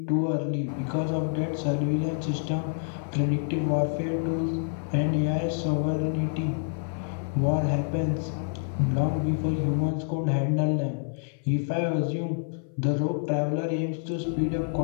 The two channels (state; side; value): silent; right; 57 dB below the other